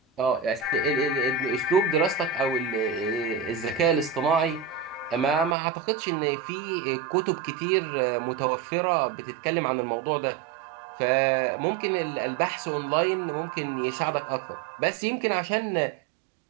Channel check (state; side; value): drops out; left; at 5.6 s